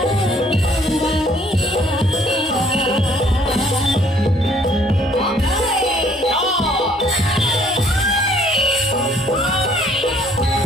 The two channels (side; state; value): both; normal; correlation 0.61